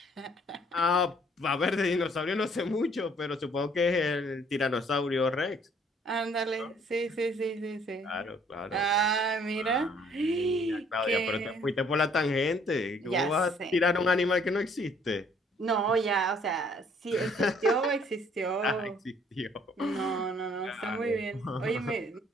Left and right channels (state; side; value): normal; both; correlation 0.61